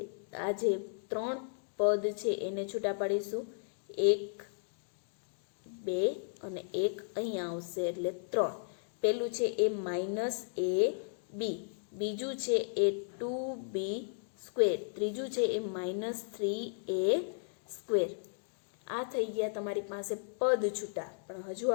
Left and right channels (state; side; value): silent; right; digital silence